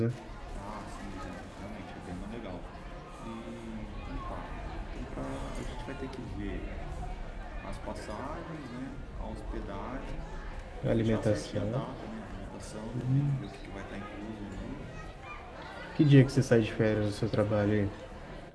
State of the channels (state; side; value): identical; both; correlation 1.00